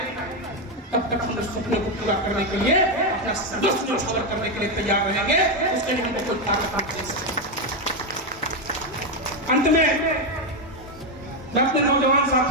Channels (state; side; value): normal; both; correlation 0.07